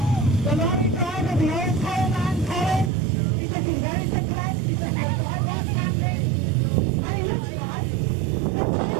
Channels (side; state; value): left; drops out; at 2.9 s